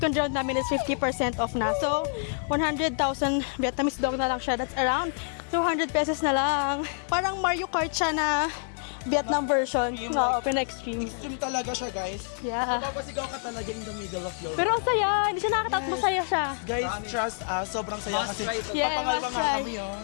round namin is 50% off na. So, 100,000 Vietnamese dong na lang siya. That's around 200 pesos na lang. Parang Mario Kart siya na Vietnam version. Oo, pina-extreme. Extreme talaga siya, guys. Yeah. Mapapasigaw ka talaga in the middle of your... Pero ang saya, hindi siya nakakatakot, masaya siya. Guys, trust us, sobrang saya Must kasi try to- Yeah, papangalwa must nga try. kami yun.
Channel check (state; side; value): silent; right; digital silence